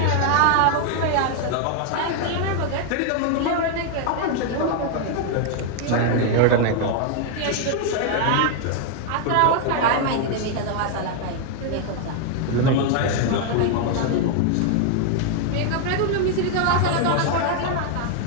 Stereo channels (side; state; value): both; different; correlation 0.00